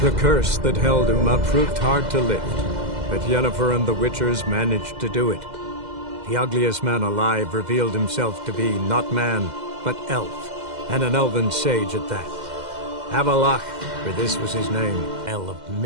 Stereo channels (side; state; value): left; late; 2.0 ms